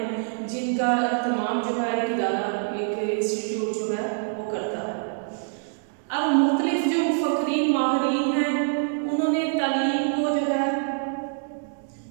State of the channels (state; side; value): silent; left; digital silence